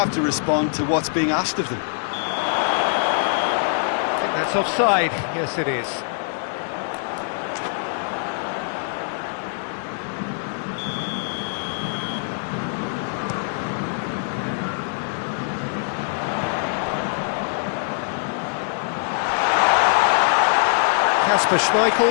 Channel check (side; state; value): right; silent; digital silence